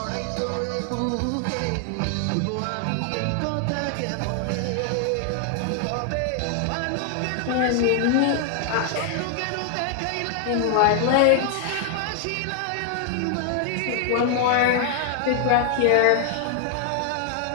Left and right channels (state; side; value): different; both; correlation 0.00